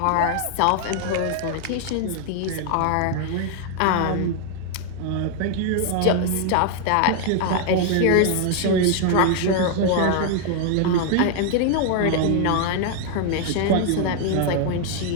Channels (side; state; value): both; different; correlation 0.00